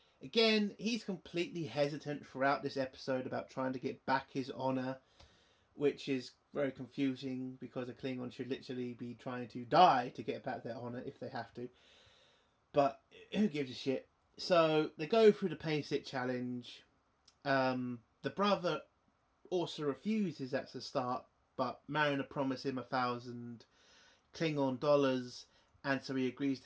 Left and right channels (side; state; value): both; identical; correlation 1.00